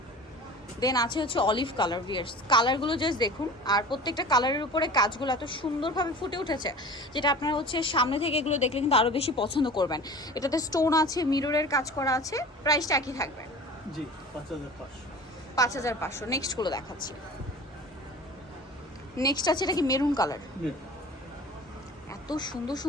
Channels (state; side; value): normal; both; correlation 0.39